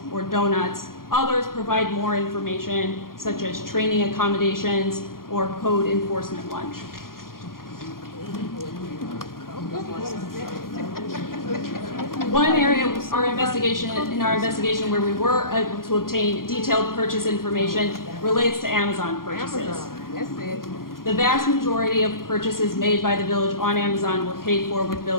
or donuts. Others provide more information, such as training accommodations or code enforcement lunch. One area in our investigation where we were able to obtain detailed purchase information relates to Amazon purchases. The vast majority of purchases made by the village on Amazon were paid for with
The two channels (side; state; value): right; late; 0.91 ms